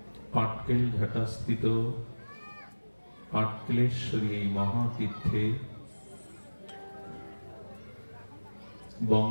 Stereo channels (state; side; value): inverted; both; correlation -1.00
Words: পাটকেল ঘাটাস্থিত পাটকেলেশ্বরী এই মহাতীর্থে